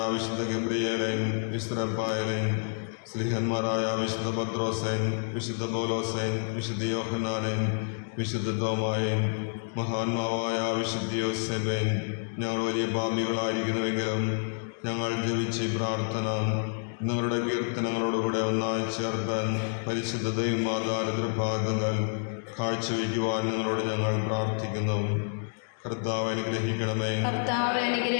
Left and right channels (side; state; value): right; silent; digital silence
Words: വിശുദ്ധ ഗബ്രിയേലേൻ, വിശുദ്ധ റഫായേലേൻ, സ്ലീഹന്മാരായ വിശുദ്ധ പത്രോസേൻ, വിശുദ്ധ പൗലോസേൻ, വിശുദ്ധ യോഹന്നാനേൻ, വിശുദ്ധ തോമായേൻ, മഹാന്മാവായ വിശുദ്ധ യോസേബേൻ, ഞങ്ങൾ വലിയ പാപികളായിരിക്കുന്നുവെങ്കിലും ഞങ്ങൾ ജപിച്ച ഈ പ്രാർത്ഥന നിങ്ങളുടെ കീർത്തനങ്ങളോടുകൂടെ ഒന്നായി ചേർത്താൻ പരിശുദ്ധ ദൈവമാതാരതൃപാദങ്ങൾ കാഴ്ചവെക്കുവാൻ നിങ്ങളോട് ഞങ്ങൾ പ്രാർത്ഥിക്കുന്നു. കർത്താവ് അനുഗ്രഹിക്കണമേ. കർത്താവ്